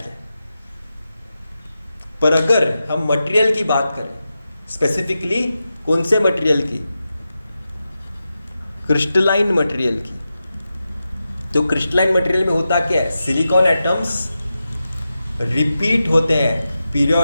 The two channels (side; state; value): both; inverted; correlation -0.91